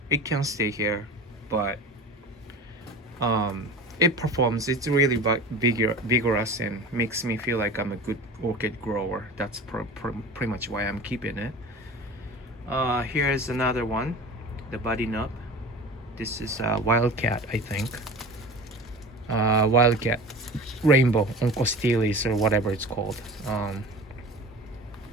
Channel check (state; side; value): normal; both; correlation 0.36